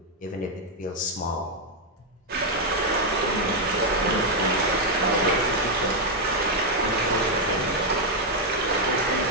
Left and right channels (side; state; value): both; normal; correlation 0.01